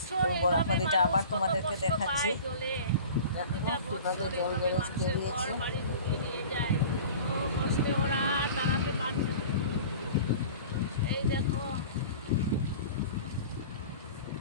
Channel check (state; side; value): inverted; both; correlation -0.40